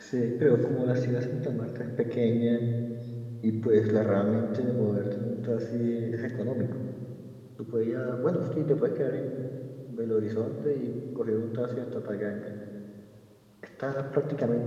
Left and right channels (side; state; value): both; identical; correlation 1.00